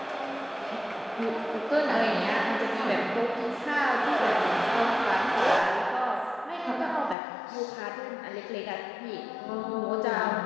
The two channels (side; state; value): right; drops out; at 7.2 s